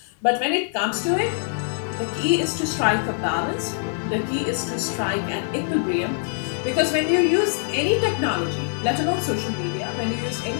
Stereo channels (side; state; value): right; silent; digital silence